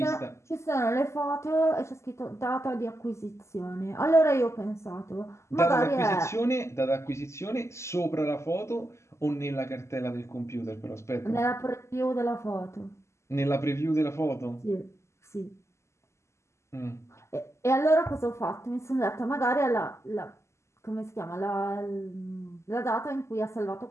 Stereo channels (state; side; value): late; right; 0.13 ms